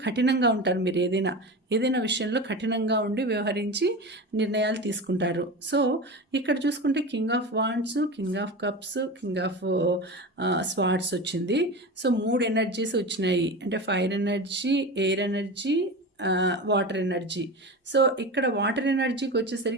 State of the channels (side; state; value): both; normal; correlation 0.27